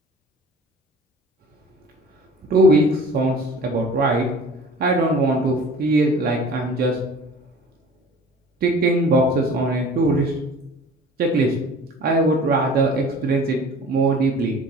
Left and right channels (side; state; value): both; normal; correlation 0.45